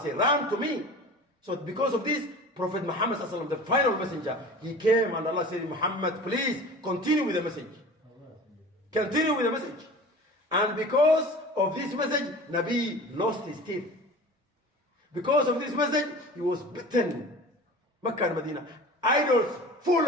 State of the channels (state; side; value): normal; both; correlation 0.38